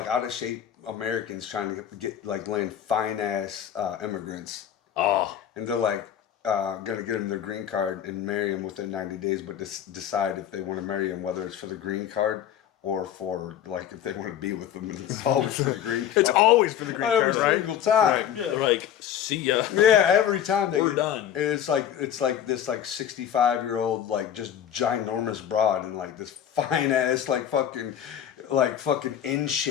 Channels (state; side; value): quieter; right; 10.0 dB